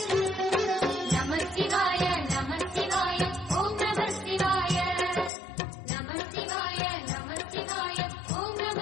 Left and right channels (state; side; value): drops out; right; at 5.3 s